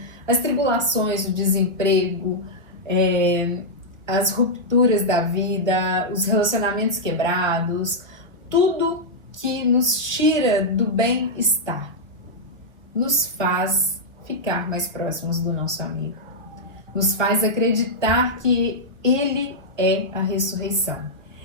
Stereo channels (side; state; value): left; late; 1.4 ms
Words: as tribulações, o desemprego, as rupturas da vida, os relacionamentos quebrados, tudo que nos tira do bem-estar, nos faz ficar mais próximos do nosso amigo, nos faz acreditar que Ele é a ressurreição